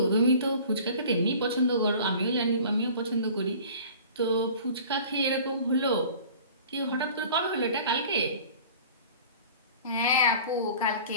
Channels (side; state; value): both; inverted; correlation -0.44